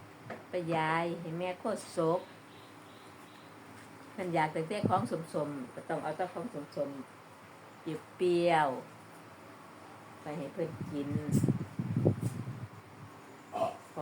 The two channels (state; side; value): identical; both; correlation 1.00